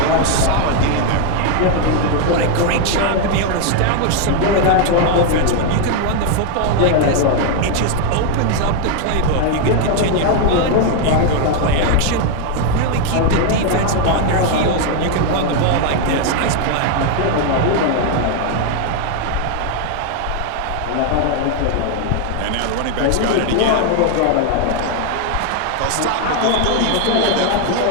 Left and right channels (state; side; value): different; both; correlation 0.01